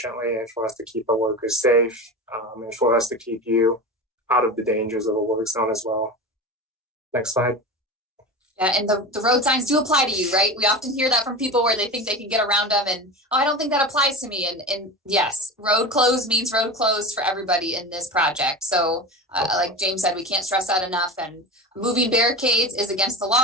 and for us to keep our workers safe, and for us to keep you out of the dangers of a work zone as well. Next slide. Yeah, and the road signs do apply to you, right? We often hear that from people where they think they can get around them and, I don't think that applies to me. And yes, road closed means road closed for everybody in this project. So like James said, we can't stress that enough. And moving barricades is against the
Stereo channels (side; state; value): both; normal; correlation 0.28